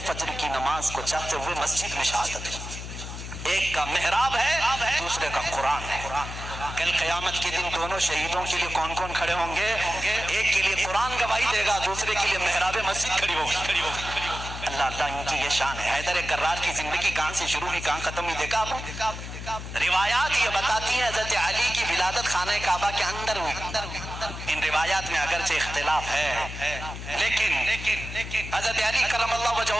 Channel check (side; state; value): left; noise; hum, 9 dB below the sound